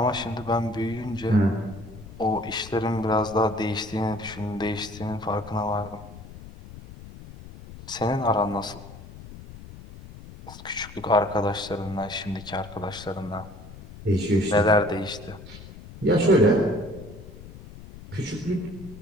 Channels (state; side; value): noise; left; rumble, 16 dB below the sound